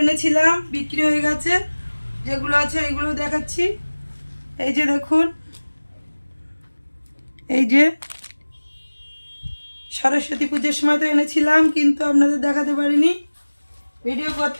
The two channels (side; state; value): both; inverted; correlation -1.00